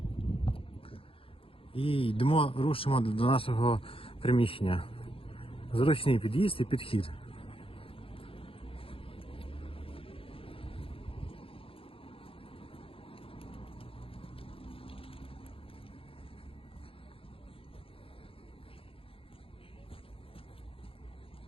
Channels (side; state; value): right; late; 0.27 ms